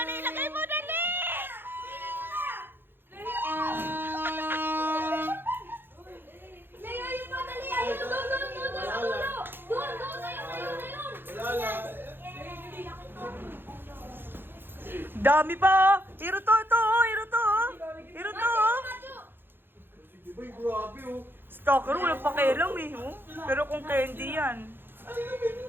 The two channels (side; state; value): left; late; 0.10 ms